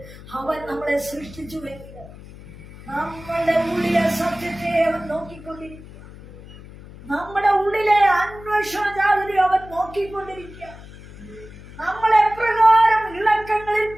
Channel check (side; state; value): left; noise; hum, 17 dB below the sound